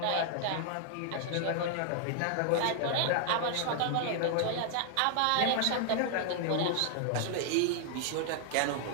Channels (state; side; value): different; both; correlation 0.00